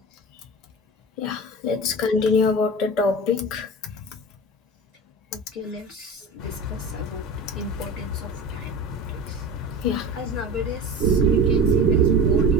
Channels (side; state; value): both; normal; correlation 0.32